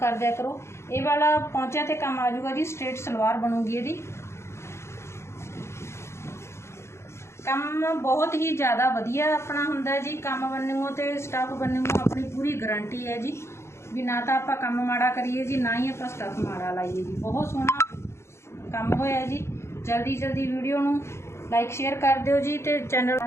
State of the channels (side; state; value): right; late; 0.13 ms